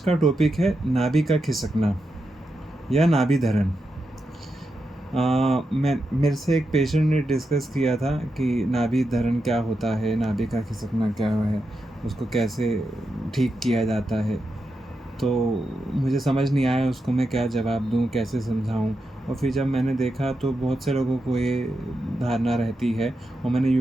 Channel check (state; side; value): normal; both; correlation 0.87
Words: टॉपिक है नाभि का खिसकना या नाभि धरण। मैं मेरे से एक पेशेंट ने डिस्कस किया था कि नाभि धरण क्या होता है, नाभि का खिसकना क्या है, उसको कैसे ठीक किया जाता है। तो मुझे समझ नहीं आया उसको मैं क्या जवाब दूँ, कैसे समझाऊँ। और फिर जब मैंने देखा तो बहुत से लोगों को ये धारणा रहती है, और मैंने